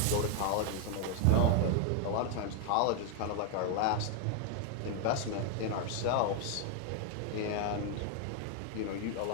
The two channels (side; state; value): both; different; correlation 0.00